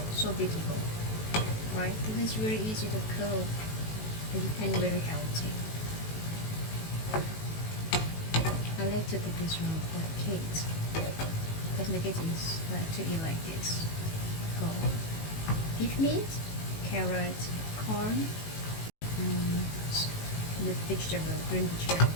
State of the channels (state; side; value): late; right; 18 ms